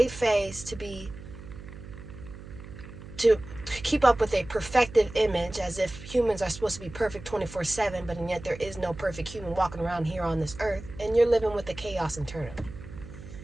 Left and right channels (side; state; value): right; noise; hum, 14 dB below the sound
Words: face to keep up with a perfective image as if humans are supposed to be perfect 24/7, but yet there is no perfect human walking around here on this earth, and you're living with the chaos internally.